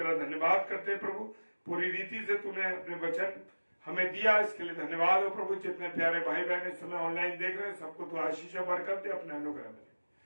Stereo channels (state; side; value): inverted; both; correlation -1.00